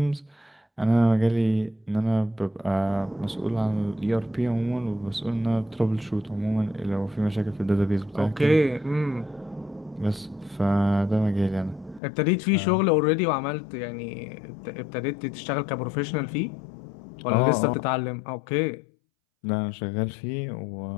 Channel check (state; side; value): drops out; right; at 12.0 s